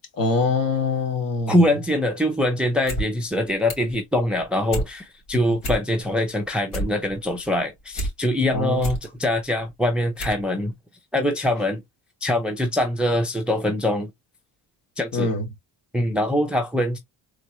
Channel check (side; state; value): both; normal; correlation 0.61